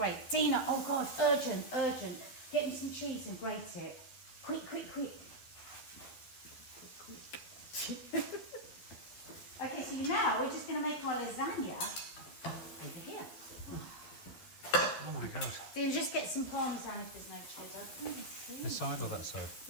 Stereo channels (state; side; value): late; right; 12 ms